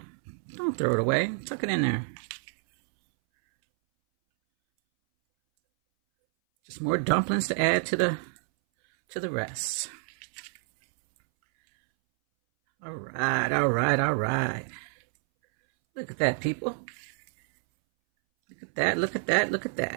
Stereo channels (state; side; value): silent; left; 59 dB below the other